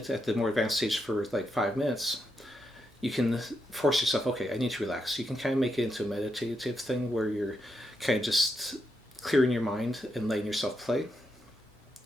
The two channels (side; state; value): both; normal; correlation 0.83